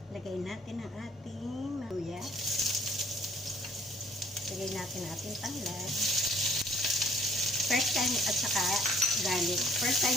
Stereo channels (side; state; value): both; normal; correlation 0.60